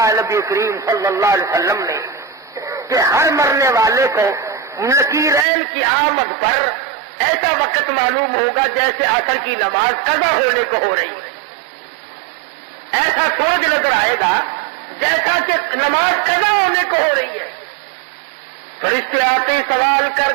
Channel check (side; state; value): left; drops out; at 5.5 s